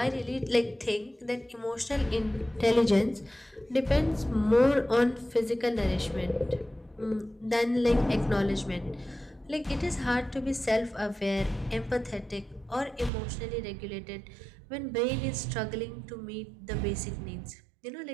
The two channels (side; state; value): left; drops out; at 13.1 s